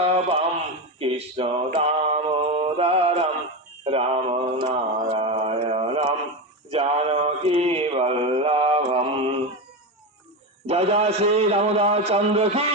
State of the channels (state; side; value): normal; both; correlation 0.16